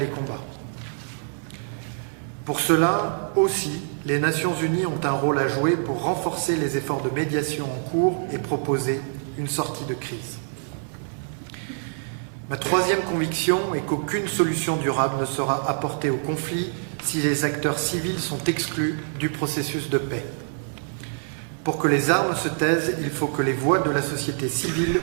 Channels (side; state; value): left; silent; digital silence